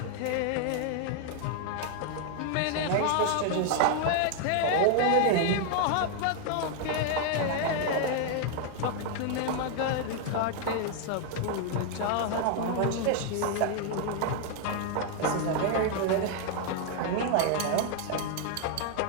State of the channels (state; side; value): different; both; correlation 0.00